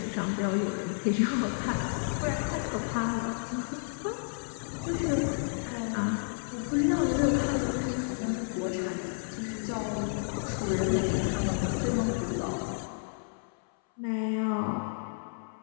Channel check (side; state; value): right; silent; 57 dB below the other